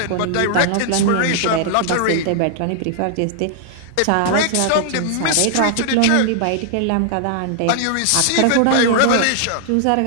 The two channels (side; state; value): both; different; correlation 0.00